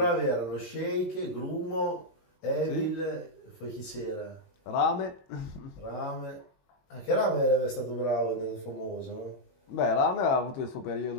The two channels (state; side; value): late; right; 21 ms